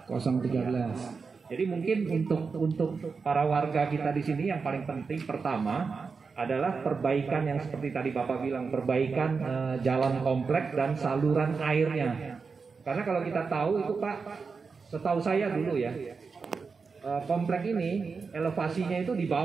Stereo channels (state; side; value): quieter; left; 5.0 dB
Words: 013. Jadi mungkin untuk para warga kita di sini yang paling penting pertama adalah perbaikan yang seperti tadi Bapak bilang, perbaikan jalan kompleks dan saluran airnya. Karena kalau kita tahu itu Pak, setahu saya dulu ya, komplek ini elevasinya itu di